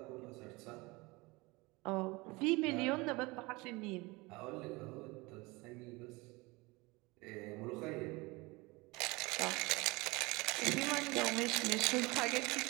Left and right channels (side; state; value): left; quieter; 23.9 dB